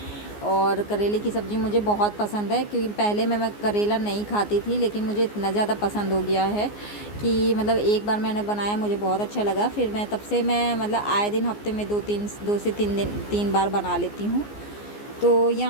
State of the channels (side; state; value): right; late; 14 ms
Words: और करेले की सब्ज़ी मुझे बहुत पसंद है, क्योंकि पहले मैं करेला नहीं खाती थी, लेकिन मुझे इतना ज़्यादा पसंद हो गया है कि मतलब एक बार मैंने बनाया मुझे बहुत अच्छा लगा। फिर मैं तब से मैं मतलब आए दिन हफ्ते में 2 से 3 बार बना लेती हूँ। तो